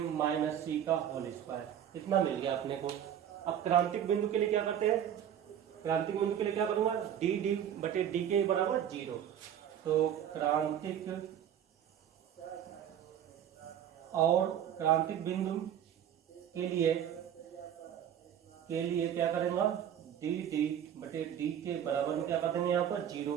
माइनस सी का होल स्क्वायर। इतना मिल गया अपने को। अब क्रांतिक बिंदु के लिए क्या करते हैं, क्रांतिक बिंदु के लिए क्या करूंगा, डी डी बटे डी के बराबर 0। तो क्रांतिक और क्रांतिक बिंदु के लिए क्या करेंगे, डी डी बटे डी के बराबर में क्या कर देंगे यहाँ पर 0।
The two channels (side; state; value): left; quieter; 9.8 dB